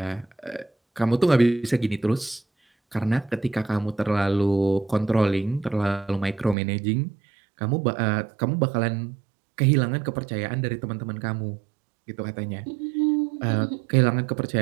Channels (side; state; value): left; drops out; at 6.6 s